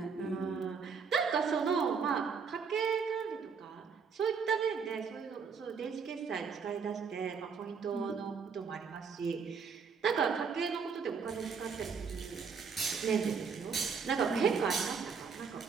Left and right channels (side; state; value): left; quieter; 5.9 dB